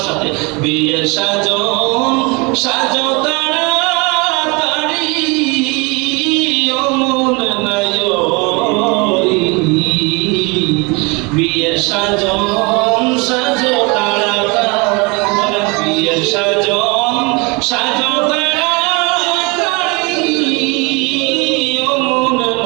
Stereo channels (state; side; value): quieter; left; 28.2 dB